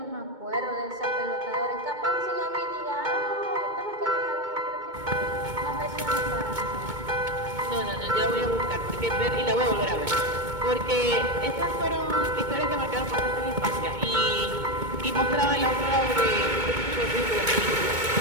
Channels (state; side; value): late; left; 2.2 ms